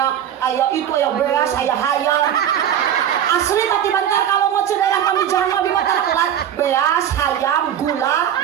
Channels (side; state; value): left; quieter; 9.9 dB